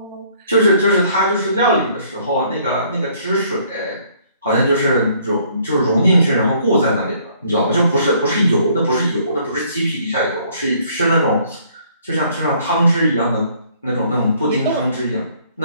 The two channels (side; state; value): both; inverted; correlation -0.62